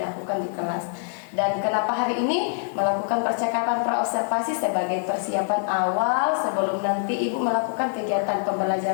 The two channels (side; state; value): right; silent; 62 dB below the other